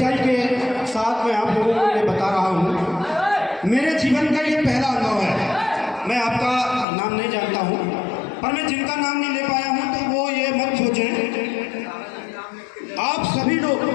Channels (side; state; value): right; drops out; at 6.9 s